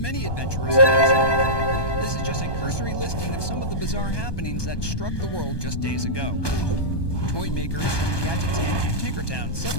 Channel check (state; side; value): late; right; 1.2 ms